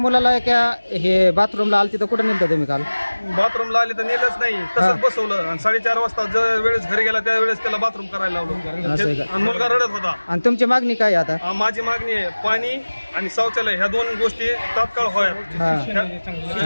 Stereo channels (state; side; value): inverted; both; correlation -1.00